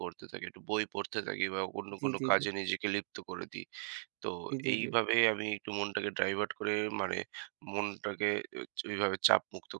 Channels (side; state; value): left; silent; digital silence